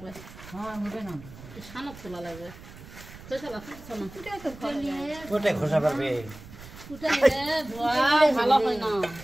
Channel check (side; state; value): right; noise; rumble, 17 dB below the sound